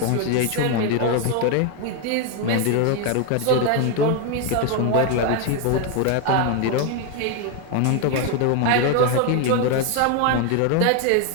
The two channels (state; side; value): different; both; correlation 0.01